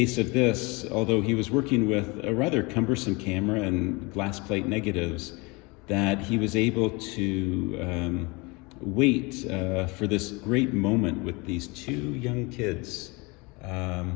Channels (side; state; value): right; quieter; 26.7 dB